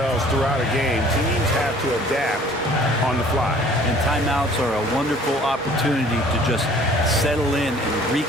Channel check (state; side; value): normal; both; correlation 0.53